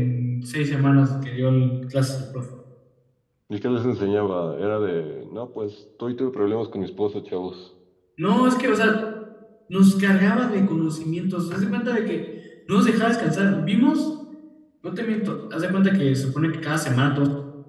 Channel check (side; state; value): both; identical; correlation 1.00